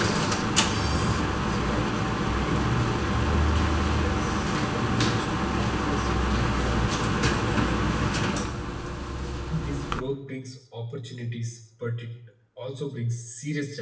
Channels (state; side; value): identical; both; correlation 1.00